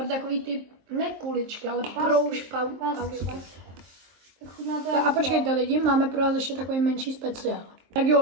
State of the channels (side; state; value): left; late; 23 ms